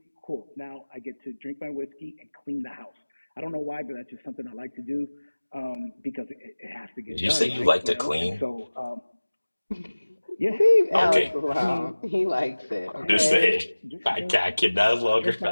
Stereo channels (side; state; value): both; inverted; correlation -1.00